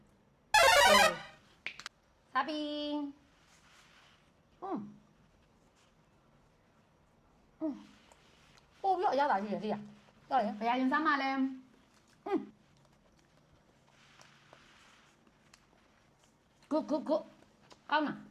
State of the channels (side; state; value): both; identical; correlation 1.00